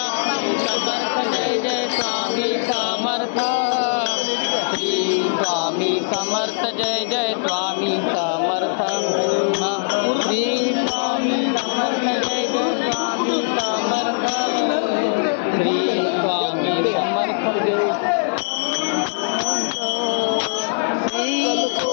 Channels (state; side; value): silent; right; digital silence